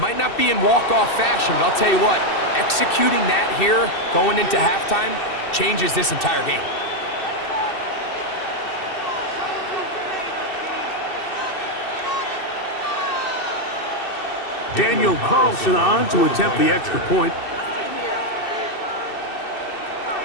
not be in walk-off fashion, but I'll tell you what, executing that here going into halftime changes this entire game. Daniel Carlson on to attempt the extra point.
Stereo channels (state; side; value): late; right; 2.7 ms